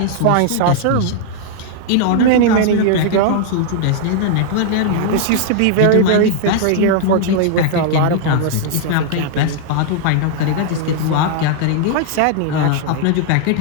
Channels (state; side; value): different; both; correlation -0.01